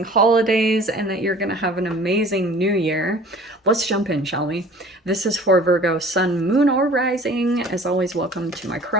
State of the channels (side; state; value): both; normal; correlation 0.47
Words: holidays and that you're gonna have an amazing new year. Let's jump in, shall we? This is for Virgo, Sun, Moon, or Rising. As always, welcome to my